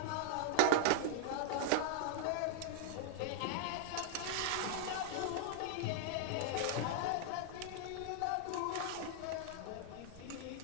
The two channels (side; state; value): both; different; correlation -0.01